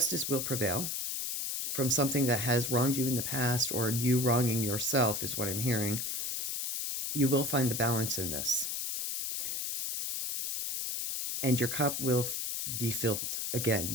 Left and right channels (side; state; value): left; noise; hiss, 2 dB below the sound